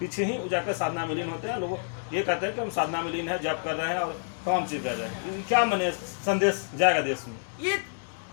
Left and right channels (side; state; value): right; silent; digital silence